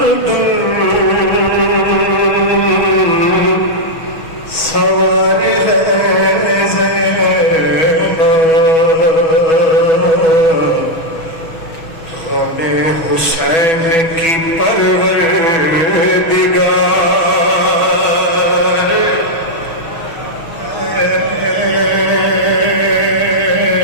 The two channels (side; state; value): right; late; 6.1 ms